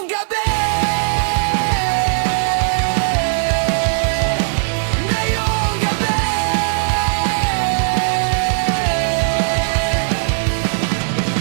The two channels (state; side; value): silent; left; 61 dB below the other